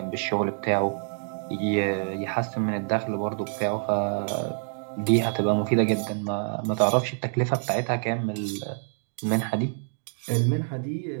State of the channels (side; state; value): left; silent; 56 dB below the other